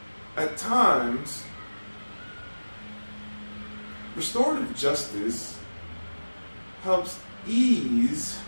At times, restorative justice helps ease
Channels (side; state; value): both; inverted; correlation -1.00